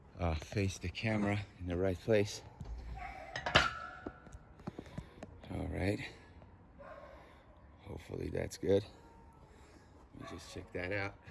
face the camera in the right place. All right, hopefully that's good. Let me just check that out.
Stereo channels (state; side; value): identical; both; correlation 1.00